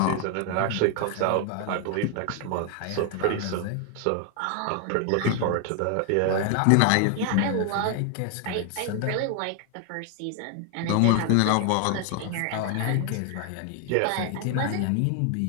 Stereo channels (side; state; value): both; different; correlation 0.00